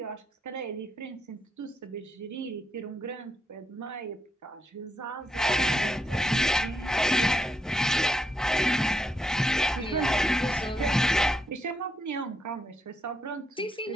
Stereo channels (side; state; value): both; normal; correlation 0.79